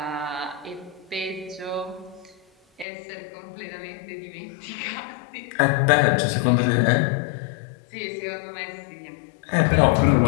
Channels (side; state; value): right; drops out; at 2.9 s